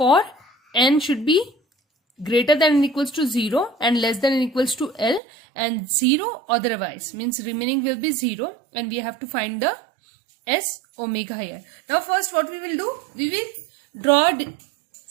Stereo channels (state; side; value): drops out; left; at 5.2 s